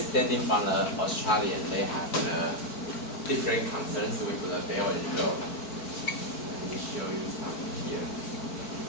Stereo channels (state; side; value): late; right; 4.5 ms